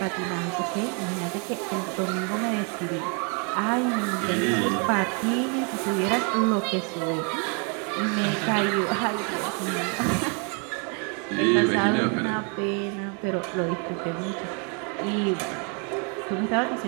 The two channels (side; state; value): left; quieter; 36.4 dB